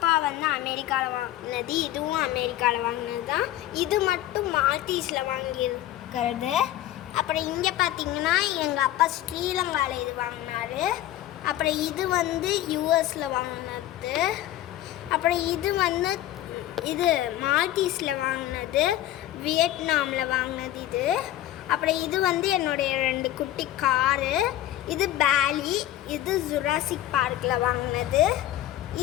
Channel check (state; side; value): quieter; right; 13.7 dB